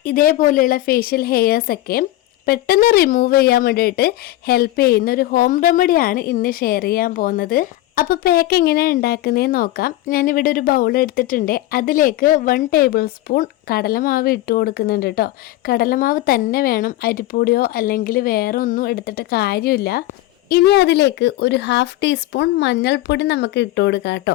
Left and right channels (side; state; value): right; quieter; 15.9 dB